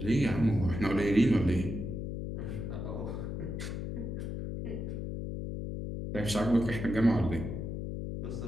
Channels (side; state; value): left; noise; hum, 4 dB below the sound